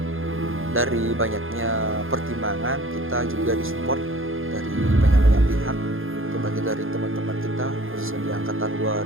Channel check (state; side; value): late; left; 0.60 ms